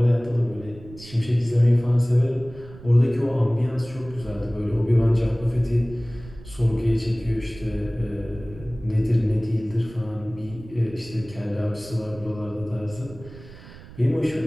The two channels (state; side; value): noise; right; rumble, 18 dB below the sound